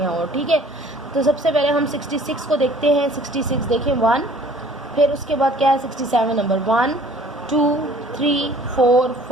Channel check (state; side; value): normal; both; correlation 0.53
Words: और। ठीक है, तो सबसे पहले हम 66 को देखते हैं। 66 देखें 1, फिर उसके बाद क्या है 67 नंबर 1 2 3 4